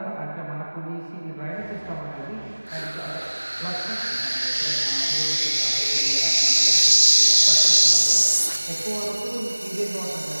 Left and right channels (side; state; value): both; inverted; correlation -1.00